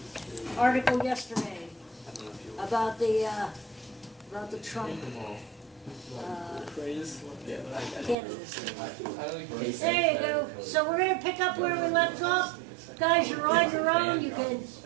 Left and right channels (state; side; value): drops out; left; at 8.2 s